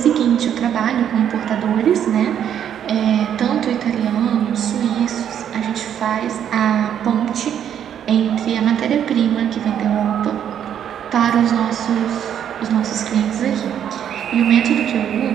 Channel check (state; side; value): quieter; left; 9.4 dB